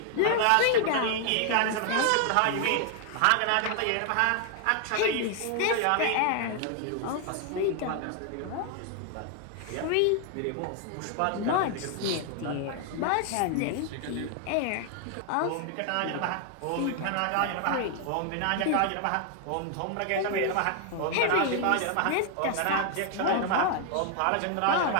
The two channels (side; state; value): both; different; correlation 0.00